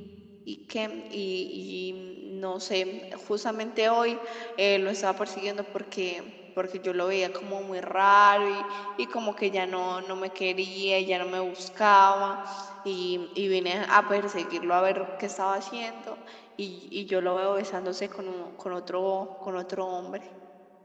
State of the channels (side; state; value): both; identical; correlation 1.00